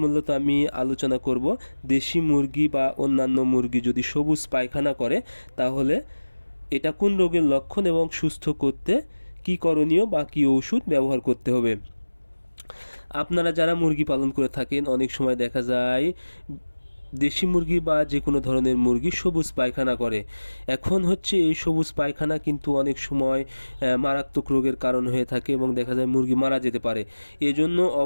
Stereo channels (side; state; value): both; inverted; correlation -1.00